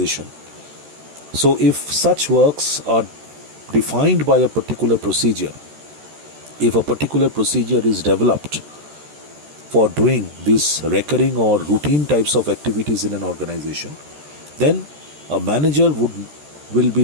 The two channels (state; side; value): late; left; 14 ms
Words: So if such works are defined by a particular procedure, if a particular procedure is developed for doing these recurring or routine types of activities in an organization, then a manager will be